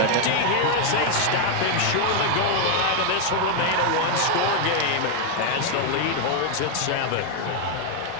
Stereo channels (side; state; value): both; different; correlation 0.01